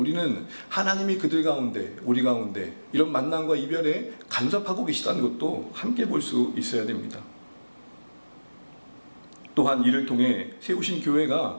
하나님이 그들 가운데, 우리 가운데 이런 만남과 이별에 간섭하고 계시다는 것도 함께 볼 수 있어야 됩니다. 또한 이를 통해 세우신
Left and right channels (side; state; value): both; inverted; correlation -1.00